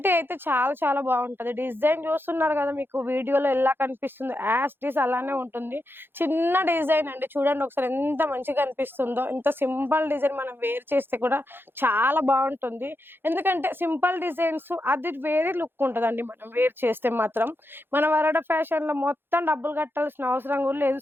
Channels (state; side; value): late; left; 0.10 ms